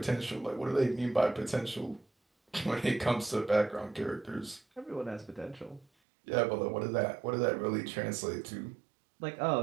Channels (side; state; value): left; drops out; at 5.9 s